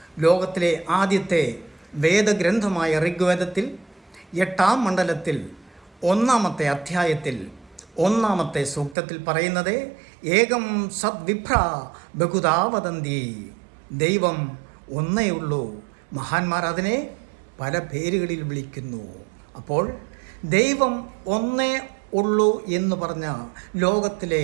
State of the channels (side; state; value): left; drops out; at 9.0 s